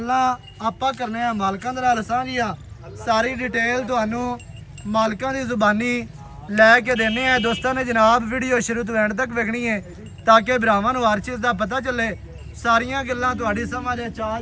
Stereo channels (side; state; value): both; identical; correlation 1.00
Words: ਆਪਾਂ ਕਰਨੇ ਆ ਮਾਲਕਾਂ ਦੇ ਨਾਲ ਸਾਂਝੀਆਂ, ਸਾਰੀ ਡਿਟੇਲ ਤੁਹਾਨੂੰ ਮਾਲਕਾਂ ਦੀ ਜ਼ੁਬਾਨੀ ਲੈ ਕੇ ਦੇਣੇ ਆ ਦੋਸਤਾਂ ਨੇ ਜਨਾਬ। ਵੀਡੀਓ ਸ਼ੁਰੂ ਤੋਂ ਐਂਡ ਤੱਕ ਵੇਖਣੀ ਹੈ ਤਾਂ ਕਿ ਭਰਾਵਾਂ ਨੂੰ ਹਰ ਚੀਜ਼ ਦਾ ਪਤਾ ਚੱਲੇ, ਸਾਰੀਆਂ ਗੱਲਾਂ ਤੁਹਾਡੀ ਸਮਝ ਚ ਆ